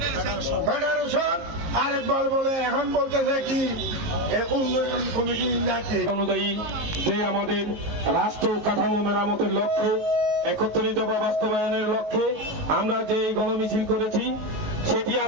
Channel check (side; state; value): left; late; 19 ms